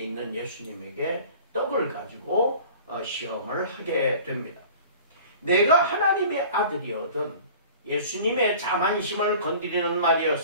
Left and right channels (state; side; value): inverted; both; correlation -0.44